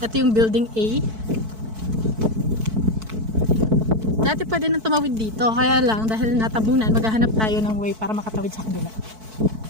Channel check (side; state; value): left; late; 4.6 ms